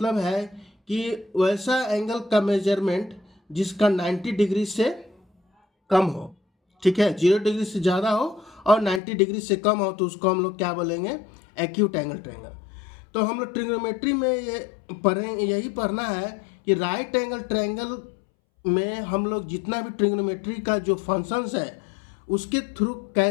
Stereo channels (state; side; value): drops out; right; at 9.0 s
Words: है कि वैसा एंगल का मेजरमेंट जिसका 90 डिग्री से कम हो, ठीक है, 0 डिग्री से ज़्यादा हो और 90 डिग्री से कम हो, तो उसको हम लोग क्या बोलेंगे? Acute angle triangle. तो हम लोग ट्रिग्नोमेट्री में यही पढ़ना है कि राइट एंगल ट्रायंगल में हम लोग जितना भी ट्रिग्नोमेट्री का जो फंक्शंस है उसके थ्रू